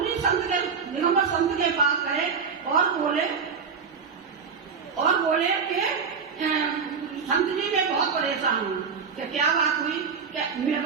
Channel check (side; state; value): left; quieter; 5.9 dB